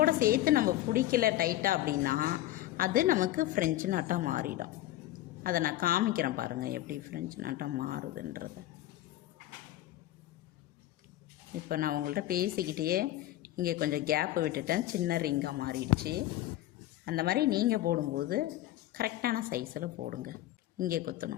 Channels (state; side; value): quieter; right; 14.8 dB